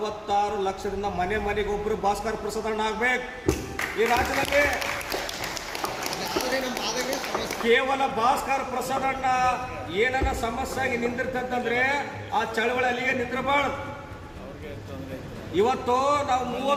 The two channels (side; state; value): both; identical; correlation 1.00